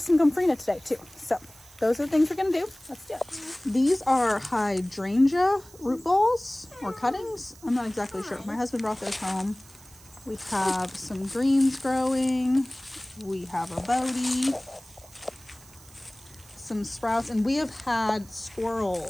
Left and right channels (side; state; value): right; noise; hiss, 23 dB below the sound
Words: some gomphrena today too. So those are the things we're gonna do. Let's do it. These are hydrangea root balls or cuttings. I'm not exactly sure. My husband brought those home. We have some greens growing. We have a bodie, some sprouts, and we have had